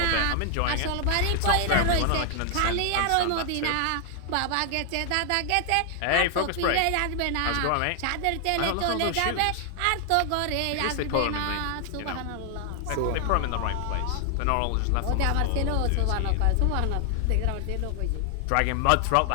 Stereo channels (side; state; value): both; different; correlation 0.00